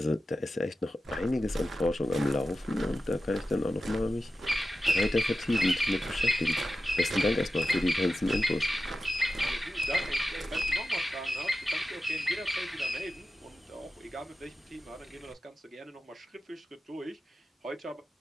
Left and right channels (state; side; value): normal; both; correlation 0.93